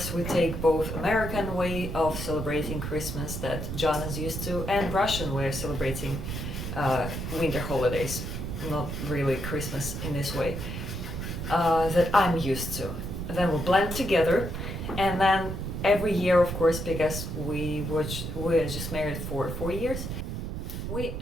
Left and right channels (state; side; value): noise; right; rumble, 5 dB below the sound